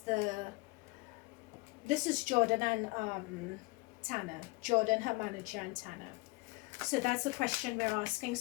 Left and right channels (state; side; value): quieter; right; 25.6 dB